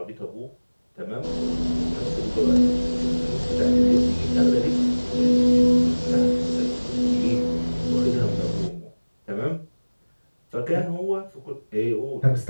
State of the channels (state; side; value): inverted; both; correlation -1.00